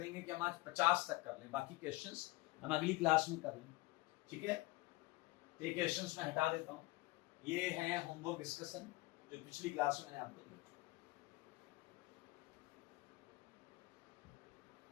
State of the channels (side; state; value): right; quieter; 21.0 dB